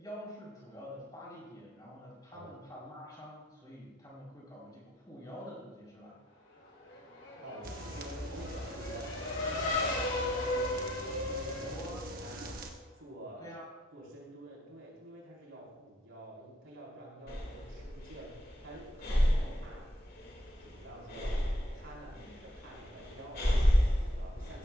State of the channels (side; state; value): both; normal; correlation 0.72